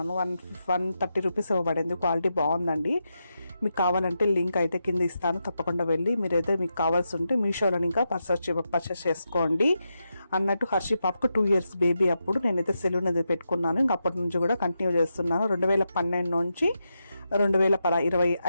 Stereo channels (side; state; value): both; inverted; correlation -0.86